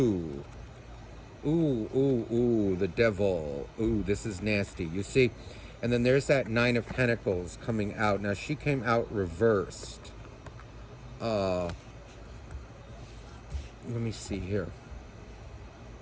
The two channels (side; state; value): both; identical; correlation 1.00